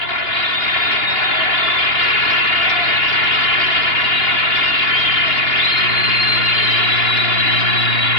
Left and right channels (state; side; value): late; right; 2.8 ms